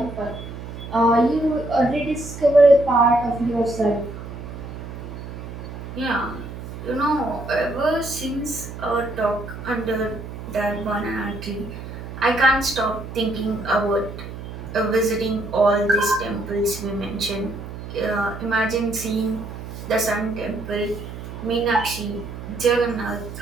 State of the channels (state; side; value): noise; right; hum, 10 dB below the sound